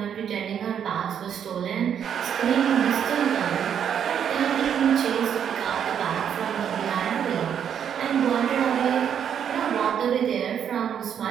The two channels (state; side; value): quieter; left; 8.5 dB